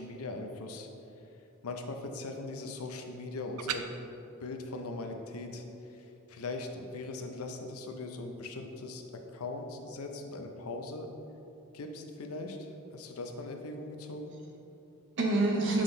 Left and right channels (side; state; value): both; normal; correlation 0.38